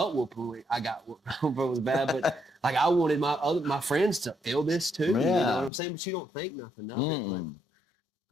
whooping I got was bad, but like I wanted my friends to feel this too. You Yeah. know what I'm saying? But you don't think nothing of it.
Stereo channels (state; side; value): drops out; right; at 5.7 s